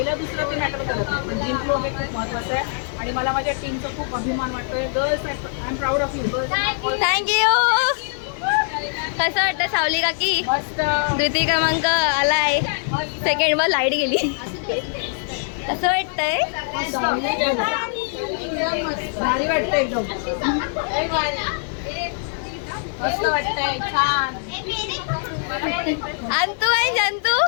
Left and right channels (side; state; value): right; silent; digital silence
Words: दुसरा ते मॅटर करत नाही, पण जिंकलो हे खूप महत्त्वाचं आहे आणि मला माझ्या टीमचा खूप अभिमान वाटतोय. Girls I am proud of you. Thank you. कसं वाटतं सावली काकी? मस्त. 2य क्रमांक आलाय. सेकंडवर लाईट गेली. कसं वाटतंय? भारी वाटतंय एकदम. मस्त वाटतंय. छान. अंतू आहे जंतू.